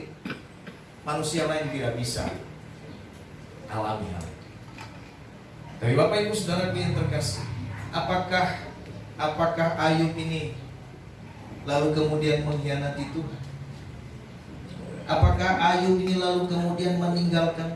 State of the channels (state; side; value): identical; both; correlation 1.00